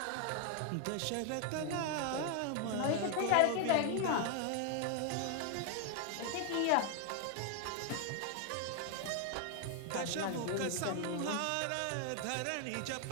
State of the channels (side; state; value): both; different; correlation 0.00